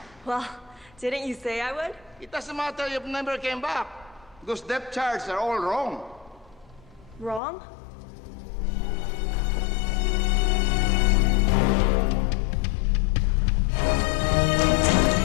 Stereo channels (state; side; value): drops out; right; at 7.4 s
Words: Well, didn't you say I would? It doesn't matter if you never came back, because depth charts are all wrong. Wrong?